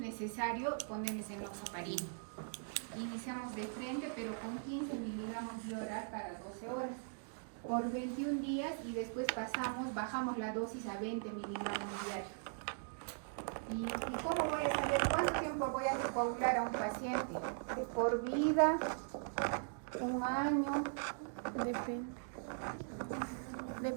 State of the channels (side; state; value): left; silent; digital silence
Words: ponerles enoxaparina. Iniciamos de frente, pero con 15 miligramos vía oral cada 12 horas por 21 días y después bajamos la dosis a 20 miligramos diarios. ¿Y cómo voy a saber cuánto tiempo voy a anticoagular a un paciente? ¿Por vida? ¿Un año?